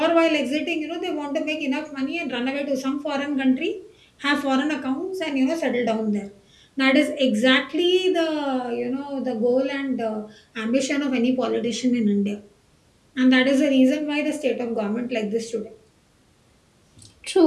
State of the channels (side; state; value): both; identical; correlation 1.00